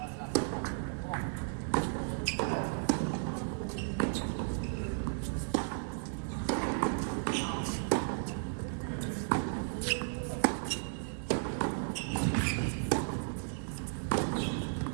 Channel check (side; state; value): left; silent; 55 dB below the other